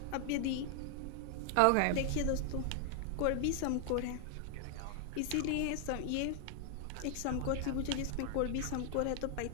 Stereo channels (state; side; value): different; both; correlation 0.00